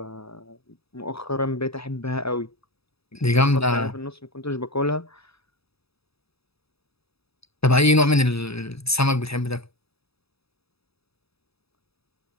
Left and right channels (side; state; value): right; late; 0.78 ms